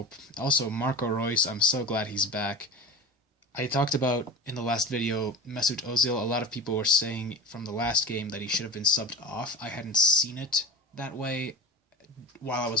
Also, Marco Reus, I'm so glad he's back. I talked about, in the last video, Mesut Ozil. A lot of people were saying from the last game that he should have been subbed off. I hadn't seen it that way while I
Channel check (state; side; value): normal; both; correlation 0.30